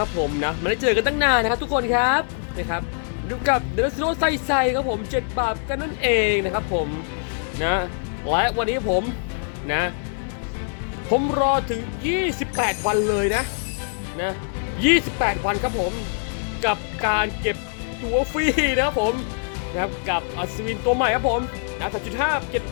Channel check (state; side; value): silent; right; 63 dB below the other